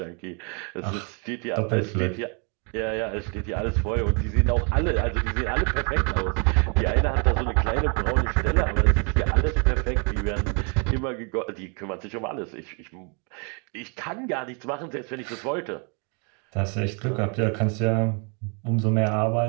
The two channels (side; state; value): left; quieter; 36.4 dB